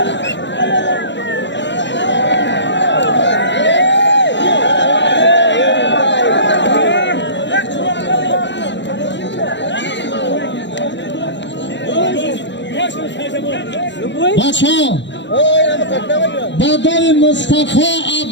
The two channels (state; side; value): late; right; 0.53 ms